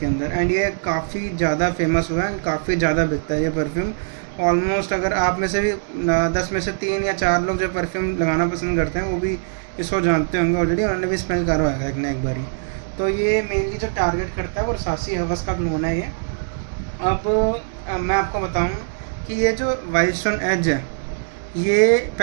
अंदर। एंड ये काफ़ी ज़्यादा फेमस हुआ है एंड काफ़ी ज़्यादा बिकता है ये परफ्यूम। ऑलमोस्ट अगर आप में से भी 10 में से 3 या 4 लोग जो परफ्यूम लगाना पसंद करते हैं वो भी इसको जानते होंगे ऑलरेडी, उन्होंने भी स्मेल करा होगा एक ना एक बारी। तो ये मेनली जो टारगेट करता है वो रसासी हवस का क्लोन है ये। अब मैं आपको बताऊँ कि ये जो वाइल्डस्टोन एज है, ये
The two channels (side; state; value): left; silent; digital silence